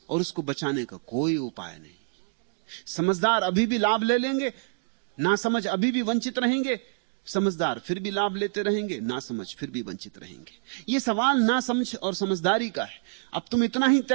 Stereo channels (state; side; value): quieter; left; 36.9 dB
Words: और उसको बचाने का कोई उपाय नहीं। समझदार अभी भी लाभ ले लेंगे, ना समझ अभी भी वंचित रहेंगे, समझदार फिर भी लाभ लेते रहेंगे, ना समझ फिर भी वंचित रहेंगे। ये सवाल ना समझ और समझदारी का है। अब तुम इतना ही